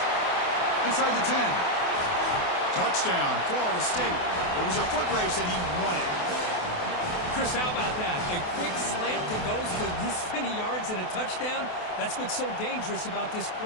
Inside the 10. Touchdown, Florida State. It was a foot race, and he won it. Chris, how about that? A quick slant that goes for this many yards and a touchdown. That's what's so dangerous about this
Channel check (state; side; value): late; right; 28 ms